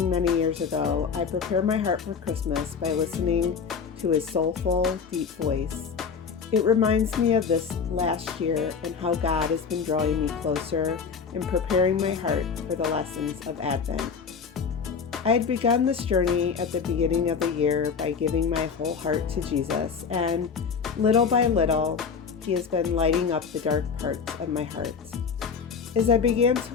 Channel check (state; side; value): quieter; right; 5.9 dB